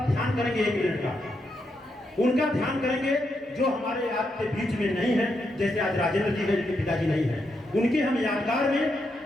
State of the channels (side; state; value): both; normal; correlation 0.82